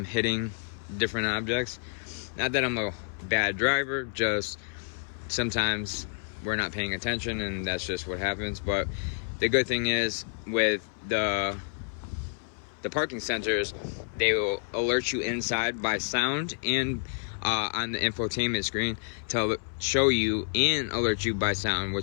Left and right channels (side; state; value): right; silent; 58 dB below the other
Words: hitting different objects. Not that I'm a bad driver, just sometimes we're not paying attention and that's just what happens. But the good thing is with the parking sensors, they will alert you inside by sound and on the infotainment screen to show you and alert you by sound,